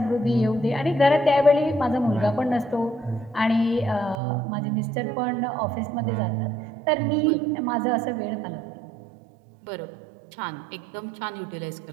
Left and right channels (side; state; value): left; drops out; at 4.2 s